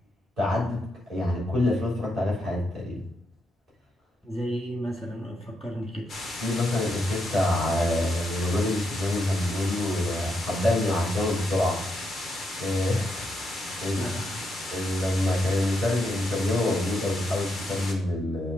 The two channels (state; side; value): normal; both; correlation 0.81